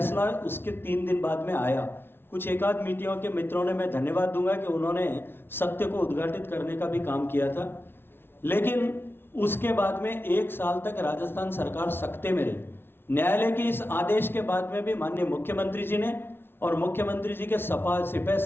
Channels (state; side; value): late; right; 0.11 ms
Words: उसके 3 दिन बाद में आया। कुछ एकाध मीडिया के मित्रों ने, मैं धन्यवाद दूंगा कि उन्होंने सत्य को उद्घाटित करने का भी काम किया था, लेकिन उसके बाद में 1 साल तक राजस्थान सरकार सकते में रही। न्यायालय के इस आदेश के बाद में भी माननीय मुख्यमंत्री जी ने और मुख्यमंत्री जी के सिपह